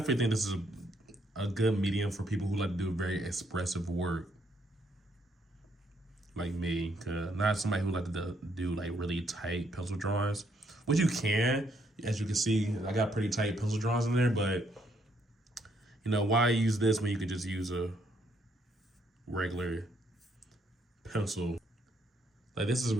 think this is a good medium for people who like to do very expressive work, like me. Cause not somebody who like to do like really tight pencil drawings, which you can. As you can see, I got pretty tight pencil drawings in there, but you know, why use this when you could just use a regular pencil? Like this is a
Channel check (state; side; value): normal; both; correlation 0.72